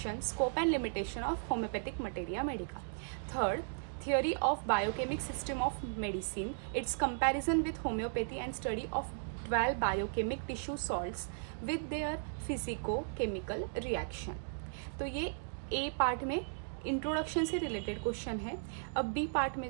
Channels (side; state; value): left; silent; digital silence